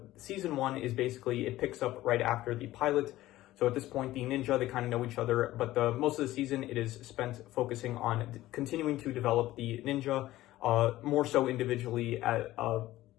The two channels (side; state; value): right; quieter; 15.9 dB